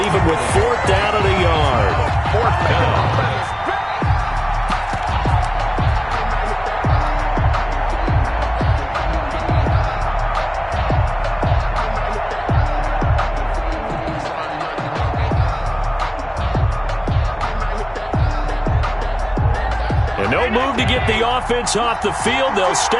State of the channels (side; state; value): both; identical; correlation 1.00